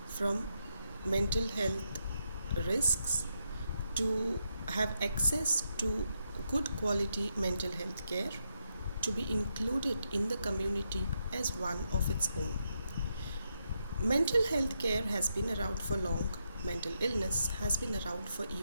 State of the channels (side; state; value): both; inverted; correlation -0.82